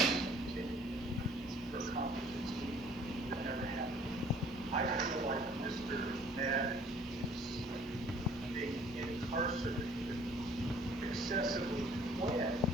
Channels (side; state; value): both; normal; correlation 0.55